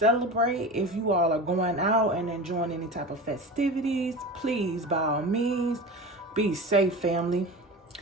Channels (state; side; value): normal; both; correlation 0.31